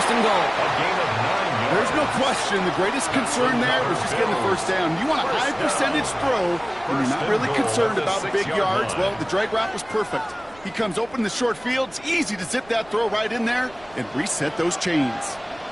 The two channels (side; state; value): right; noise; rumble, 26 dB below the sound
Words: and goal. There's no question the greatest concern there was just getting the 1st down. You want a high percentage throw when you're not really concerned about big yards. Well, the drag route was perfect. He comes open in the short field. It's easy to zip that throw right in there and reset those chains.